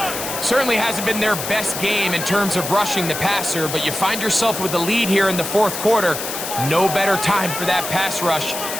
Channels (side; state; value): left; noise; hiss, 6 dB below the sound